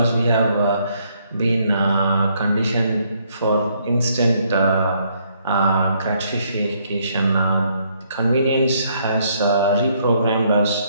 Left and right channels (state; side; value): inverted; both; correlation -0.70